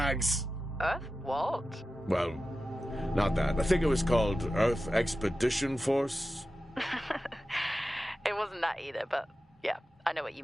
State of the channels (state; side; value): normal; both; correlation 0.94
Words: Earth? What? Well, Not that. I think it was called Earth Expedition Force. It wasn't that either, but yeah, I know what you